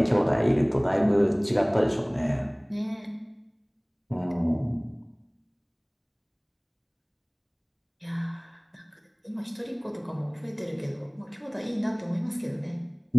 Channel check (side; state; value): both; identical; correlation 1.00